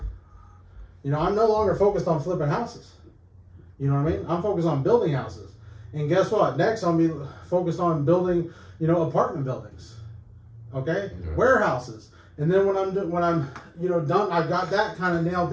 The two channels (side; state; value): both; identical; correlation 1.00